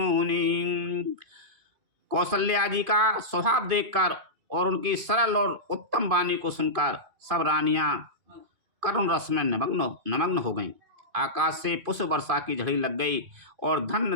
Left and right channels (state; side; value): late; left; 2.5 ms